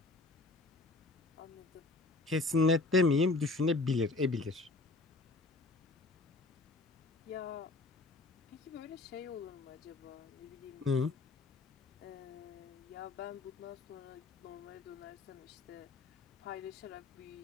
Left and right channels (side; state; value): right; quieter; 3.3 dB